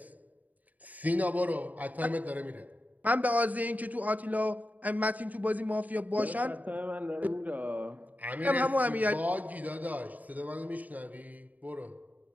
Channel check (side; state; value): left; late; 0.076 ms